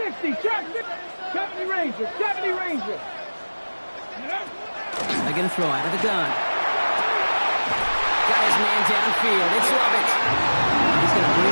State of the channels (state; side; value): inverted; both; correlation -1.00